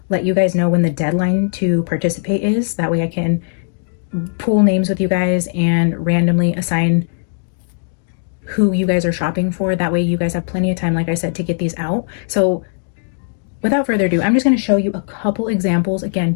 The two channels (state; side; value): silent; right; digital silence